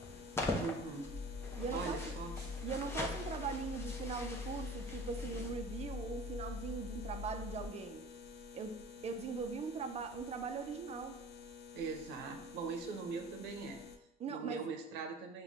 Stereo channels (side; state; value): both; normal; correlation 0.42